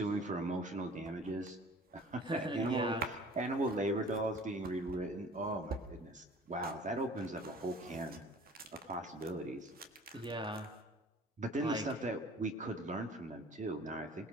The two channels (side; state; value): both; normal; correlation 0.48